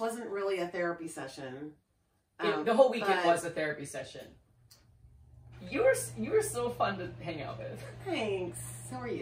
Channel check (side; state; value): both; identical; correlation 1.00